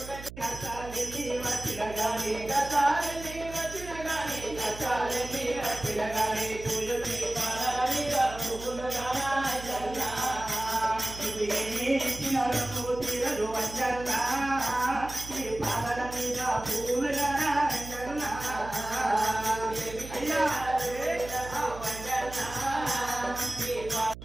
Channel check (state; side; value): noise; right; hum, 13 dB below the sound